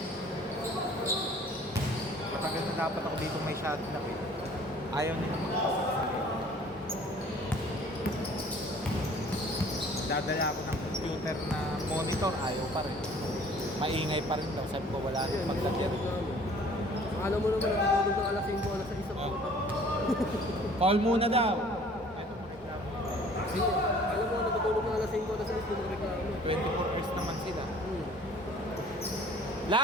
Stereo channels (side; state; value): both; normal; correlation 0.52